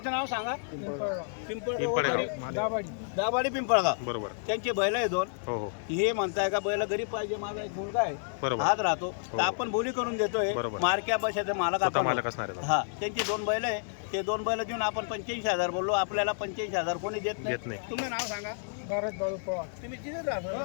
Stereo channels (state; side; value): silent; right; digital silence